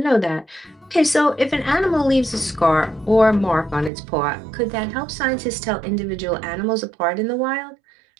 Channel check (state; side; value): drops out; left; at 3.9 s